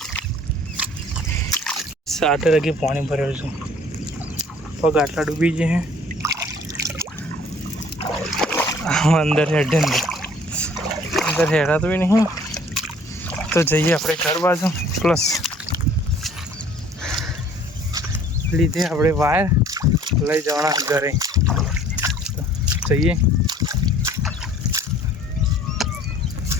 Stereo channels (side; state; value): both; normal; correlation 0.55